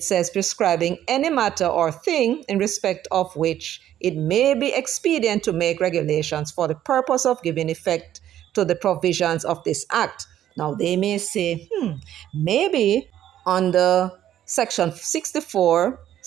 says prescribing any matter or thing in respect of which it may be expedient to make regulations for the purpose of giving effect to the provisions of this act. Now, they may say, maybe under section 64,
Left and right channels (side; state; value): left; quieter; 11.6 dB